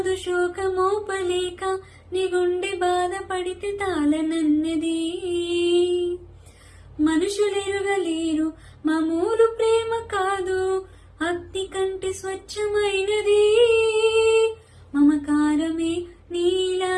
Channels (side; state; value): both; identical; correlation 1.00